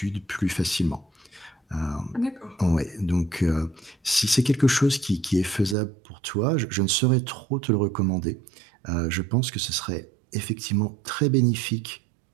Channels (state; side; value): drops out; left; at 5.8 s